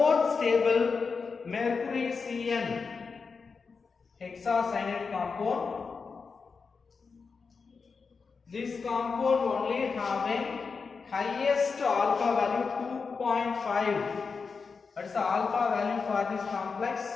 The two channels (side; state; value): right; quieter; 5.0 dB